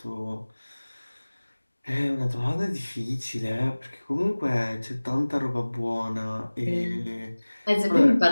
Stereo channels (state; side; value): inverted; both; correlation -1.00